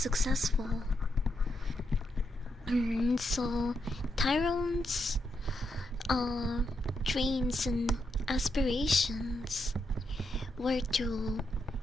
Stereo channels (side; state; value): both; normal; correlation 0.81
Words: So Tyrone's dreams and aspirations were to